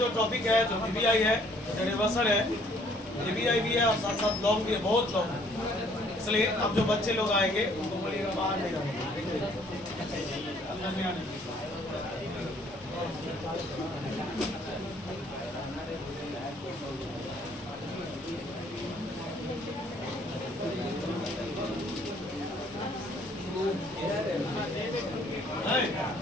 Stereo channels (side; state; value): both; normal; correlation 0.61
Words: टॉपिक है जो ईबीआई है, रिवर्सल है, ईबीआई भी है और साथ साथ लॉन्ग भी है, बहुत लॉन्ग है। इसलिए अब जो बच्चे लोग आएंगे उनको बोलिएगा बाहर नहीं आएंगे, अंदर नहीं आने।